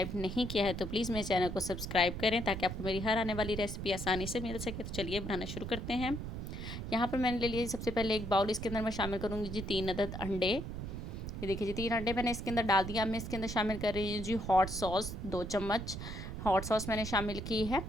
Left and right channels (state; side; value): noise; right; rumble, 6 dB below the sound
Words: नहीं किया है तो प्लीज़ मेरे चैनल को सब्सक्राइब करें ताकि आपको मेरी हर आने वाली रेसिपी आसानी से मिल सके। तो चलिए बनाना शुरू करते हैं। यहाँ पर मैंने ले लिया सबसे पहले एक बाउल। इसके अंदर मैं शामिल करूँगी जी 3 अदद अंडे। ये देखिए जी 3 अंडे मैंने इसके अंदर डाल दिया। मैं इसके अंदर शामिल कर रही हूँ जी हॉट सॉस। 2 चम्मच हॉट सॉस मैंने शामिल की है।